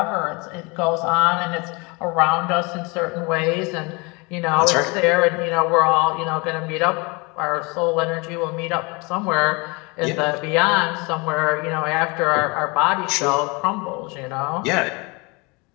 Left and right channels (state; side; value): quieter; right; 28.1 dB